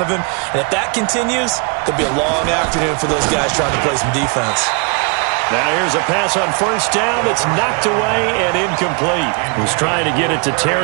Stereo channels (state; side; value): quieter; left; 33.8 dB